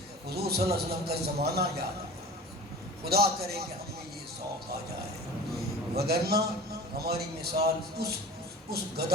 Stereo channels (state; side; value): normal; both; correlation 0.38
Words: حضور صلی اللہ علیہ وسلم کا زمانہ یاد آئے۔ خدا کرے کہ ہم میں یہ شوق آ جائے، وگرنہ ہماری مثال اس